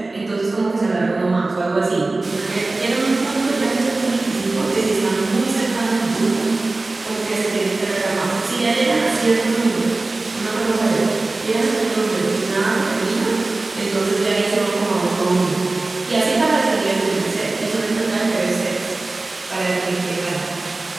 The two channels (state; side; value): quieter; left; 3.2 dB